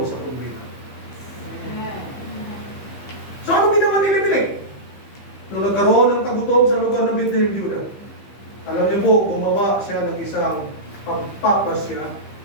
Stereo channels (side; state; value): right; late; 15 ms